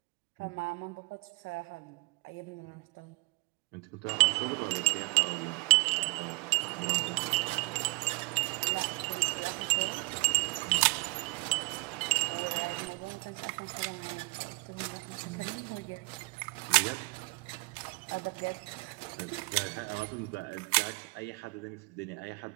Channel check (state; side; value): quieter; left; 27.2 dB